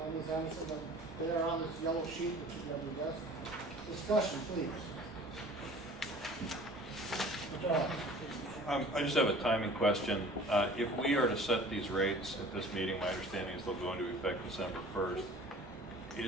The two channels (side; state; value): both; normal; correlation 0.46